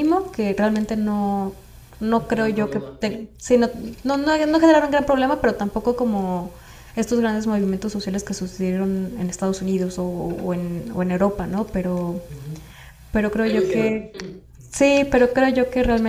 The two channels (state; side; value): identical; both; correlation 1.00